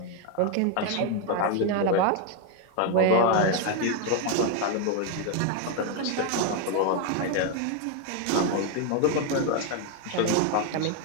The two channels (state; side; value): different; both; correlation 0.01